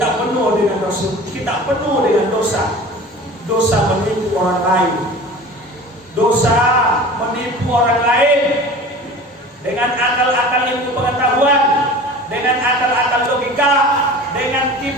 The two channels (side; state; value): both; normal; correlation 0.39